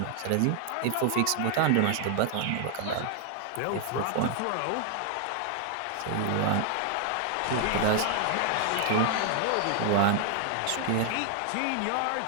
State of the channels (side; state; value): both; different; correlation 0.00